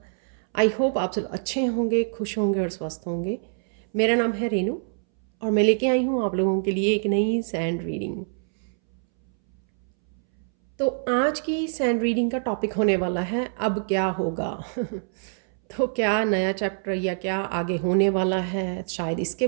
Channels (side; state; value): left; silent; 62 dB below the other